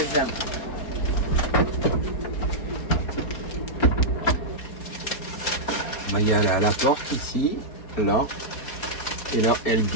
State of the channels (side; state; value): right; late; 4.3 ms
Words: Maya, elle est à la porte ici, là, et là, elle